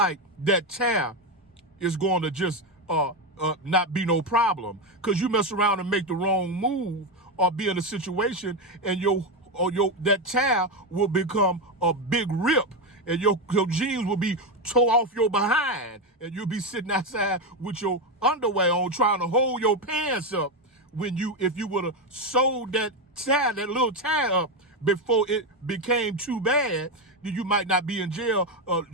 that tear is going to just not be no problem, because you mess around and make the wrong move or be in a situation and that tear will become a big rip, and your jeans will be tore off your behind, and you'll be sitting outside with your underwear on trying to hold your pants up if you would have sewed that little tear up before it became too bad, then you might not be in jail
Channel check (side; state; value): both; normal; correlation 0.10